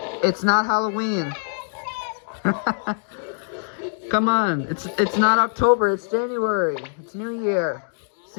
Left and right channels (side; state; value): right; silent; digital silence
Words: it's not Halloween. Come on, it's not October. It's January. It's New Year.